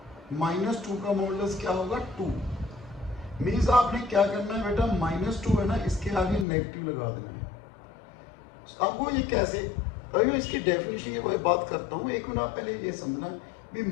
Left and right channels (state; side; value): drops out; right; at 6.5 s